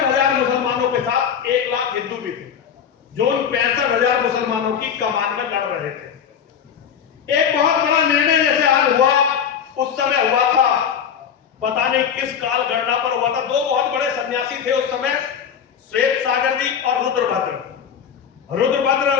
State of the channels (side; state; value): right; quieter; 7.9 dB